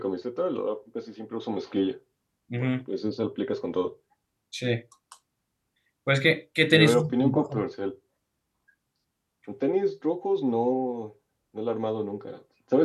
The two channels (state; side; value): identical; both; correlation 1.00